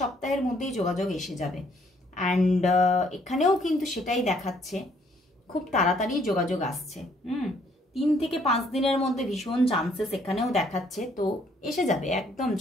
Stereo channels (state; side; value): normal; both; correlation 0.66